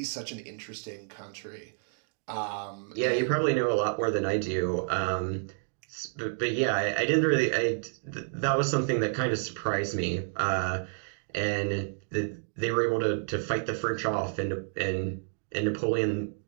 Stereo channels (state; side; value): silent; left; digital silence